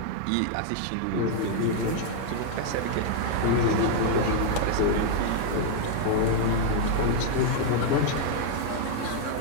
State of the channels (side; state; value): both; different; correlation 0.00